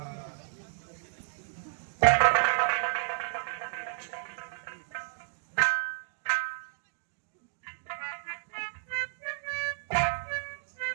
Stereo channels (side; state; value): left; silent; digital silence